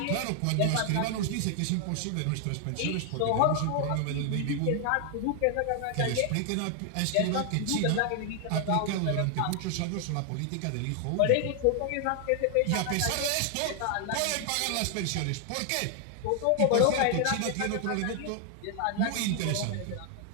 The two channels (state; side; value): different; both; correlation 0.00